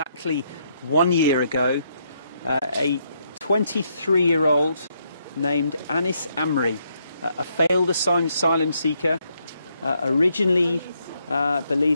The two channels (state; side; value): inverted; both; correlation -0.75